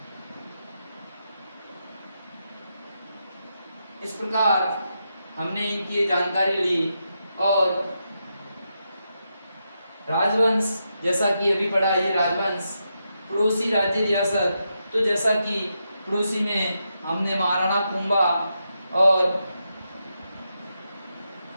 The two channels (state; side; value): inverted; both; correlation -0.84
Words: इस प्रकार हमने इनकी जानकारी ली। और राजवंश, जैसा कि अभी पढ़ा, ये राजवंश पड़ोसी राज्य रियासत, तो जैसा कि पड़ोसी में हमने महाराणा कुंभा और